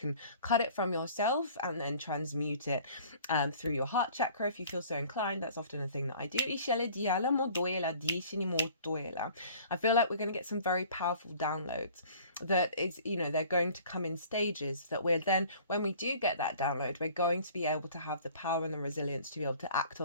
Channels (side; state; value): both; inverted; correlation -0.50